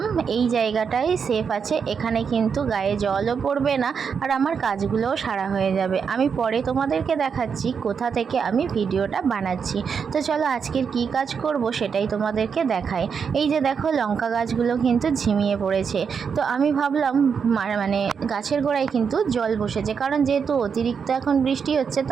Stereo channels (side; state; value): left; quieter; 6.4 dB